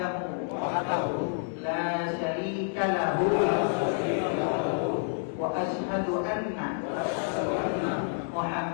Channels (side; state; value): right; silent; 59 dB below the other